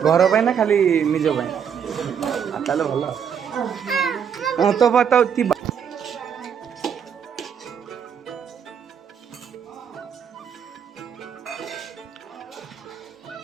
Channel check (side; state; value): left; quieter; 7.7 dB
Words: घर ना खाली निज ताले भल हाँ तो फटा उठा